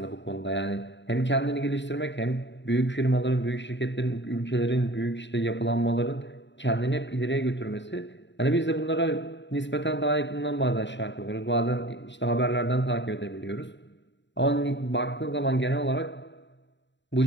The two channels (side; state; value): right; late; 0.52 ms